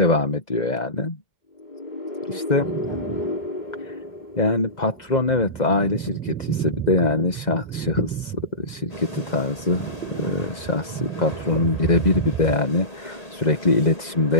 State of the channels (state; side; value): late; right; 2.0 ms